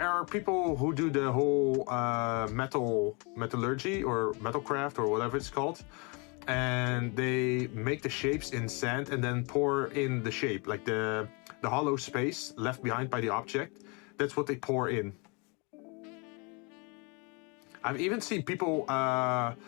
are people who do the whole metallurgy or metalcraft or whatever it's called, and they make the shapes in sand and then pour in the shape, like the hollow space left behind by the object. That's what they pour in. I've even seen people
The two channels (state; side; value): quieter; right; 31.3 dB